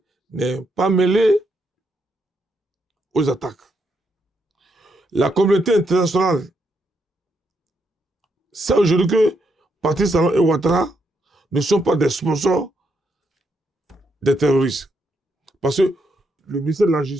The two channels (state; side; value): normal; both; correlation 0.78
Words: n'est pas mêlé aux attaques. La communauté internationale sait aujourd'hui que Patrice Talon et Ouattara ne sont pas des sponsors des terroristes. Parce que le ministère de la